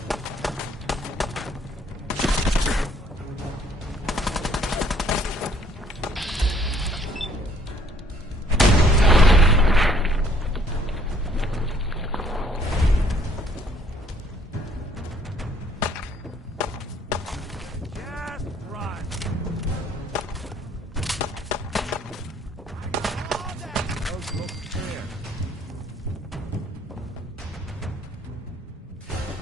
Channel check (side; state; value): both; normal; correlation 0.62